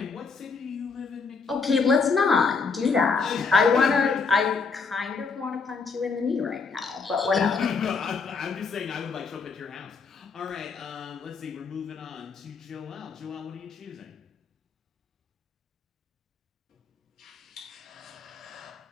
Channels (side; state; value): right; quieter; 4.9 dB